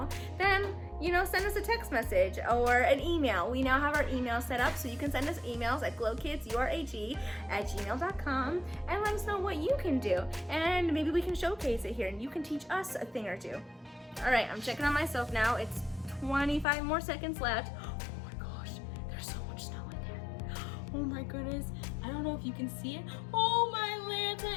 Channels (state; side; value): drops out; right; at 16.7 s